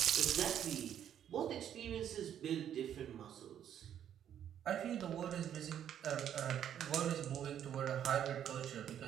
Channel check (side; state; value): left; quieter; 9.8 dB